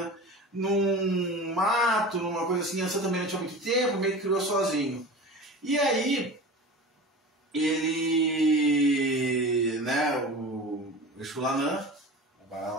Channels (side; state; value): both; normal; correlation 0.34